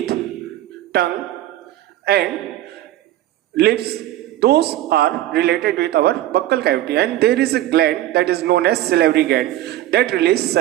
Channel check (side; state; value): left; quieter; 14.2 dB